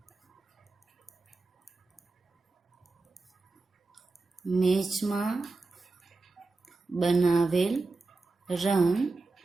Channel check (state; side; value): quieter; left; 3.6 dB